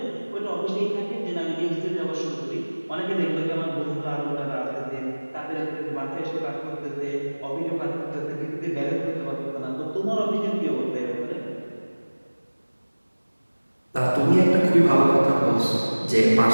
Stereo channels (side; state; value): both; inverted; correlation -1.00